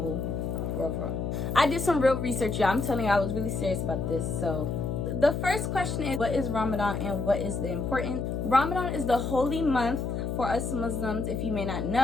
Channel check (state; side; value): noise; left; hum, 2 dB below the sound